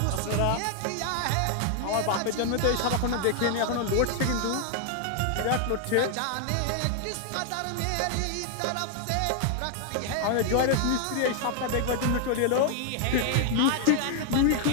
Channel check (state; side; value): different; both; correlation 0.00